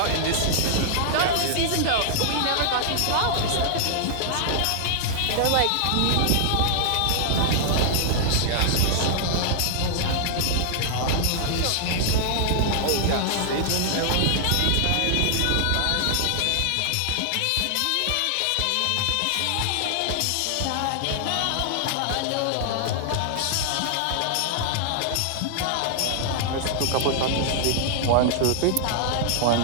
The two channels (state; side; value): different; both; correlation -0.01